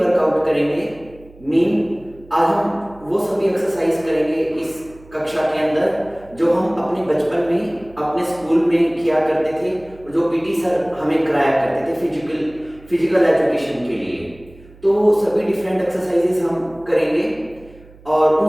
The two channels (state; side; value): noise; right; hum, 23 dB below the sound